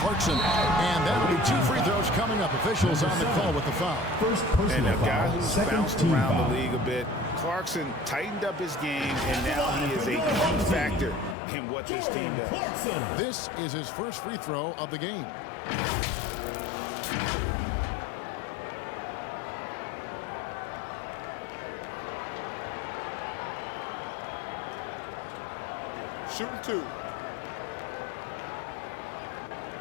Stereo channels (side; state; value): right; drops out; at 11.4 s